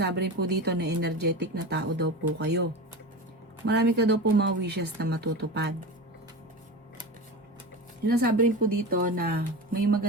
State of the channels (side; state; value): both; normal; correlation 0.27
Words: rin po dito na energetic na tao daw po kayo. Marami ka daw po mga wishes na matutupad. Sinasabi rin po dito na may